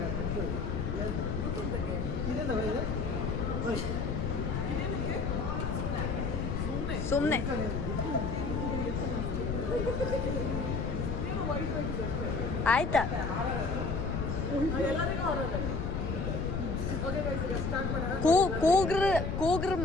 ಸುಮ್ಮನೆ ಆಯ್ತಾ? ಕೂಗ್ರ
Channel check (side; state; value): left; noise; rumble, 1 dB below the sound